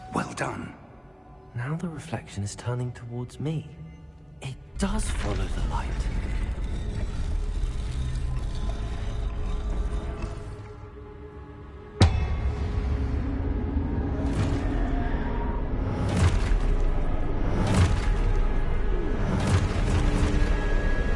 Well done. Now the reflection is turning towards me. It does follow the light.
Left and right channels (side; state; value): both; identical; correlation 1.00